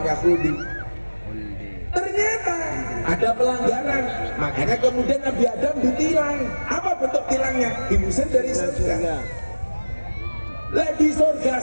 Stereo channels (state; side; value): inverted; both; correlation -1.00